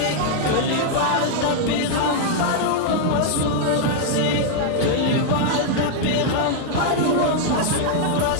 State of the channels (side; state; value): both; different; correlation -0.01